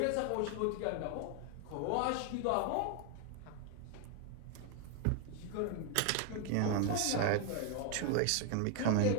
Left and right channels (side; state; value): both; different; correlation 0.00